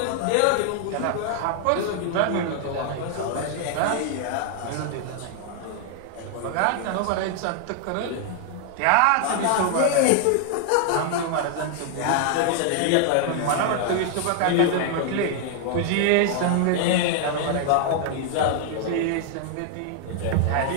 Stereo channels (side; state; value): both; different; correlation 0.00